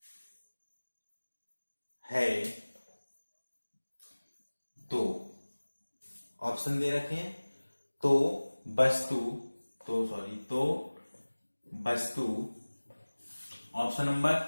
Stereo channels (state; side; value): inverted; both; correlation -1.00